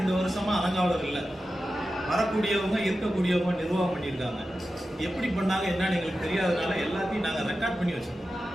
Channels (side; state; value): both; normal; correlation 0.92